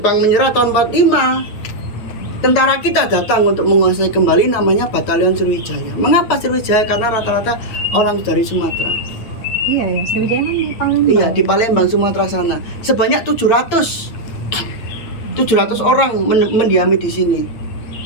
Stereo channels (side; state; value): right; late; 8.8 ms